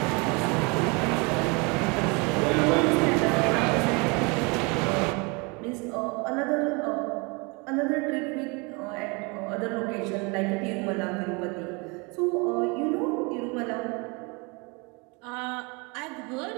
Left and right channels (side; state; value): left; quieter; 29.4 dB